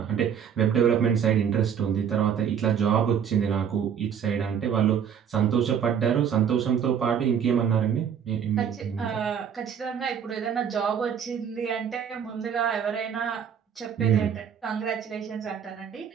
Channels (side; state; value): left; quieter; 7.9 dB